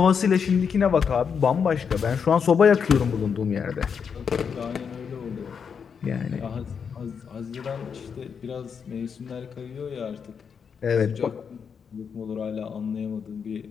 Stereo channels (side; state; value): right; quieter; 6.6 dB